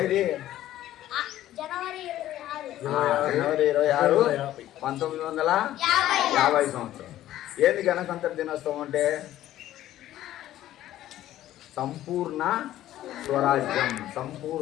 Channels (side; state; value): right; quieter; 13.5 dB